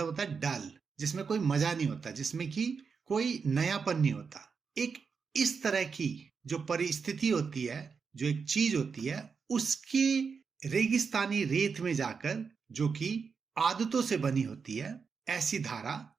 होता है डल, जिसमें कोई मजा नहीं होता, जिसमें कि कोई नयापन नहीं होता। एक इस तरह की जो परिस्थिति होती है, जो एक चीज होती है, उसके रेगिस्तानी रेत में जाकर, जो कि आदतों से बनी होती है, ऐसी धारा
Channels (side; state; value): left; quieter; 5.6 dB